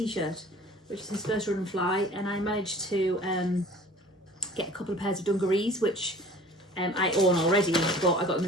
which is his first Run and Fly, and I managed to get a couple of pairs of dungarees, which I own already, but I got them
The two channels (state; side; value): normal; both; correlation 0.47